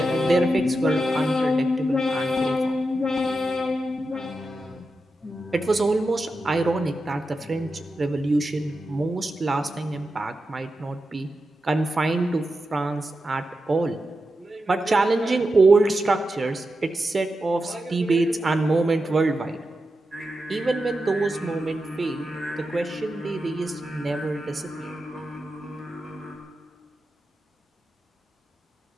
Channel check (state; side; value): normal; both; correlation 0.89